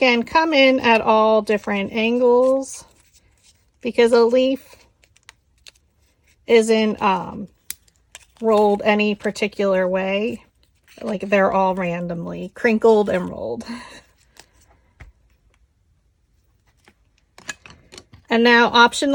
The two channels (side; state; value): both; identical; correlation 1.00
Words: come in at all different angles because a leaf isn't rolled any particular way. Like they're all randomly crinkled and rolled. And now